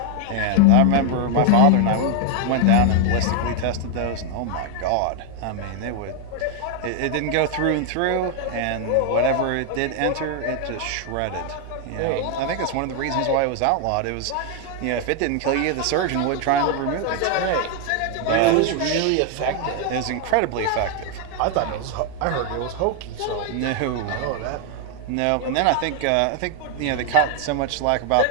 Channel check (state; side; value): different; both; correlation 0.00